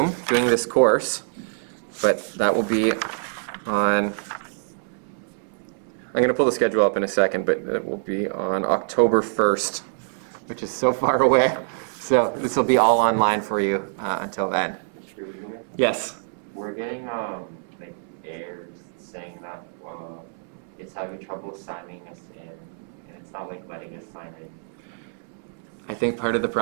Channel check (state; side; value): silent; left; 62 dB below the other